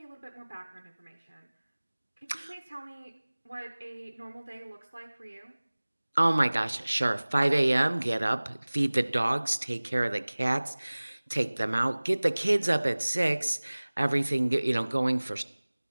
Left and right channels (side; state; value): both; inverted; correlation -1.00